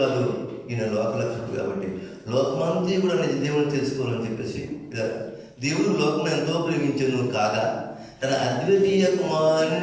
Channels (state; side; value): identical; both; correlation 1.00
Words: ఈయన లోకలక్షకుడు కాబట్టి లోకమంతా కూడా నిజ దేవుని తెలుసుకోవాలని చెప్పేసి దేవుడు లోకం ఎంతో ప్రేమించను కాగా తన అద్వితీయ